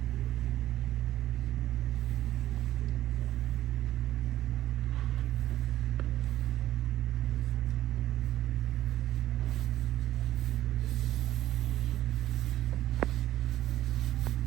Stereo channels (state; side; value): quieter; left; 14.0 dB